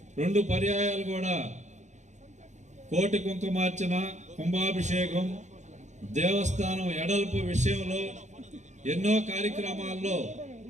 2 పర్యాయాలు కూడా కోటి కుంకుమార్చన, కుంభాభిషేకం, దేవస్థానం ఎడల్పు విషయంలో ఎన్నో కార్యక్రమాల్లో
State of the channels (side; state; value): left; late; 0.34 ms